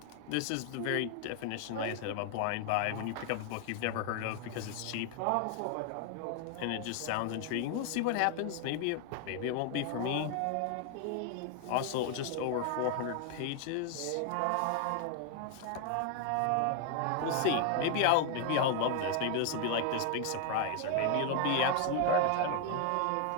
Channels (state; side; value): different; both; correlation 0.00